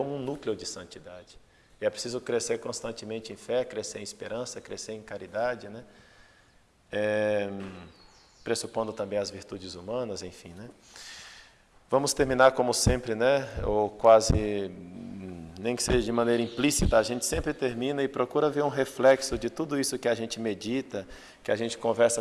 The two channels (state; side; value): identical; both; correlation 1.00